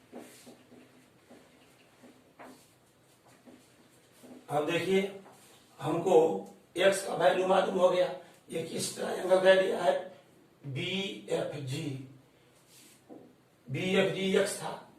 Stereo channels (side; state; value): both; identical; correlation 1.00